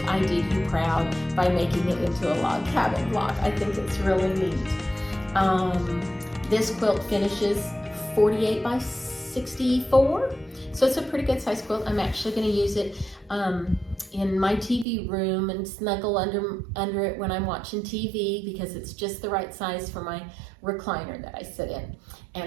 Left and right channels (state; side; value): drops out; left; at 14.9 s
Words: I did you proud by making it into a log cabin block. I think it's really neat. This quilt finishes 48 by 64, so it's a pretty good size quilt. I'm actually going to use it in my TV room and snuggle under it when I'm watching TV because it's just the right size for my recliner that I sit in.